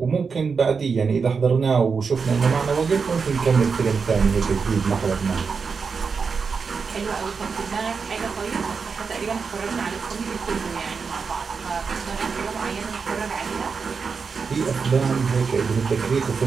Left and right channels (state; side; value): quieter; left; 5.4 dB